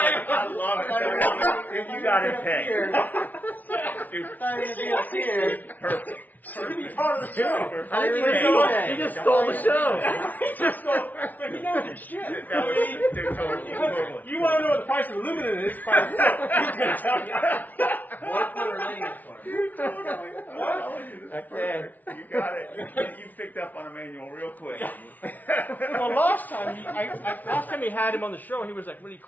love it. If you got it pegged. Dude, perfect. It's going to be part of the show. I didn't Perfect. even know that. You just stole the show. But you know the shit. That was, dude, totally. You want to know what the price of aluminum is? He's going to tell you. Okay. You got it. You picked up on Emmanuel real quick. Well, last time he had him on the show, he was like really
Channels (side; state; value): right; late; 0.078 ms